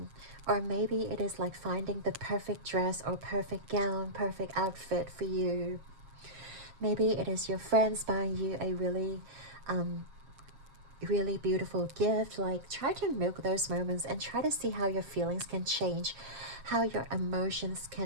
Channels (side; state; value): left; late; 7.4 ms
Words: maybe it is like finding the perfect dress or perfect gown, perfect outfit for you. Maybe it is your friends buying you a really beautiful gift. Like, try to milk those moments and try to see how your feelings can change, how your emotions